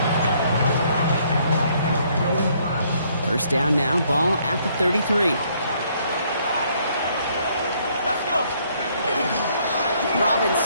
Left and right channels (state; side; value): inverted; both; correlation -0.67